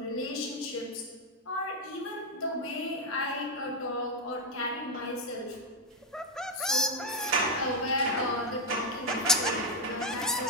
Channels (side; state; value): both; normal; correlation 0.05